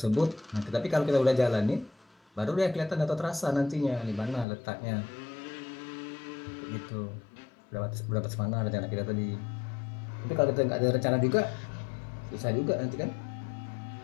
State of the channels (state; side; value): drops out; right; at 4.5 s